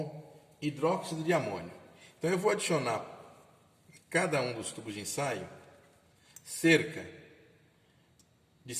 hidróxido de amônio. Então eu vou adicionar em cada um dos tubos de ensaio cerca de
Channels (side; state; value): both; identical; correlation 1.00